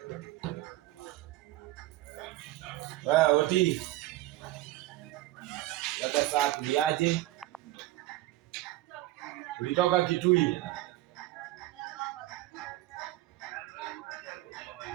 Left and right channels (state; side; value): quieter; left; 16.7 dB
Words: Oti. Sasa saa kuliaje? Ulitoka Kitui?